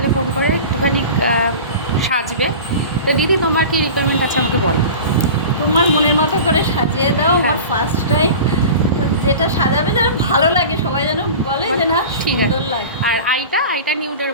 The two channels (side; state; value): both; inverted; correlation -0.35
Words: ফোন করে একটুখানি সাজবে। তো দিদি তোমার কি রিকোয়ারমেন্ট আছে আমাকে বলো। তোমার মনের মতো করে সাজিয়ে দাও। হ্যাঁ। আমার ফার্স্ট টাইম, তো যেটা সাজাবে যেন ভালো লাগে, সবাই যেন বলে যে না ঠিক আছে। সুন্দর লাগে। আর আইটা নিউডের